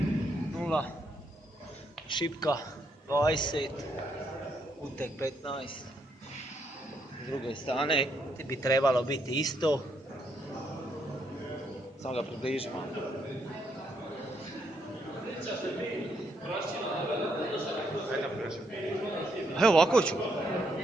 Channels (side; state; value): both; normal; correlation 0.75